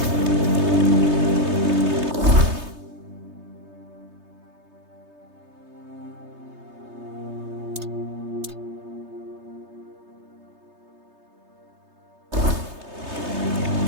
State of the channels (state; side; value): late; left; 3.3 ms